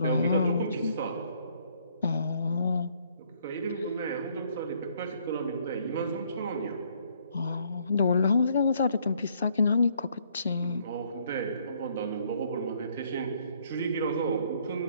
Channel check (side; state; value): both; inverted; correlation -0.65